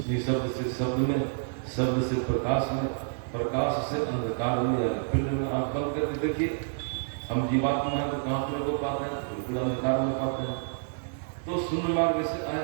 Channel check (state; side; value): silent; left; digital silence